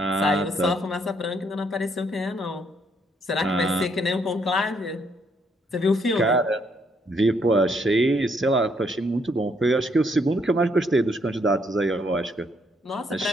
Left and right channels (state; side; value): normal; both; correlation 0.71